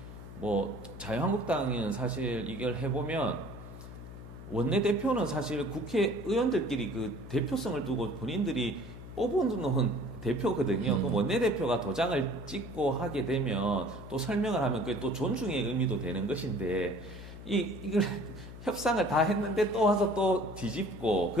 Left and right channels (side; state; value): left; noise; hum, 13 dB below the sound